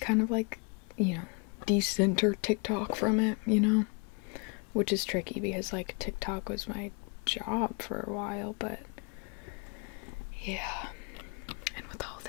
of like, you know, decenter TikTok from it, you know? Which is tricky because like TikTok was my job for a while, but yeah. And with all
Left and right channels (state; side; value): quieter; right; 33.8 dB